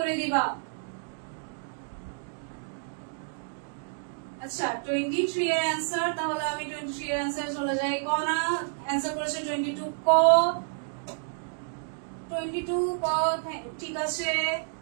দিবা। আচ্ছা, 23 এর অ্যান্সার, তাহলে আমি 23 এর অ্যান্সার চলে যাই। ক না, অ্যান্সার করেছে 22 ক। 22 ক, ঠিক আছে।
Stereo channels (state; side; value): silent; left; digital silence